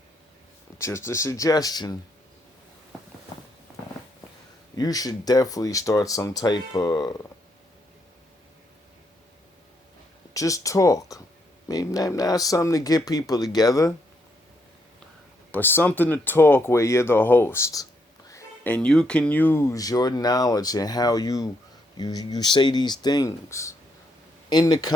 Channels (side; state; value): both; normal; correlation 0.76